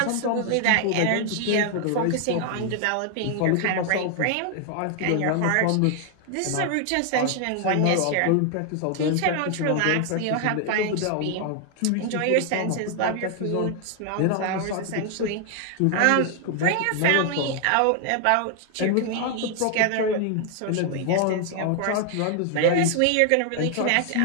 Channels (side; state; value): both; different; correlation 0.00